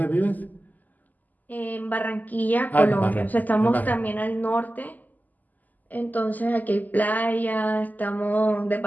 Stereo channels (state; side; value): late; right; 0.082 ms